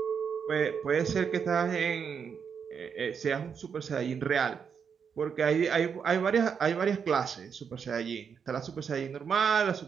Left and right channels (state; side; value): quieter; left; 6.8 dB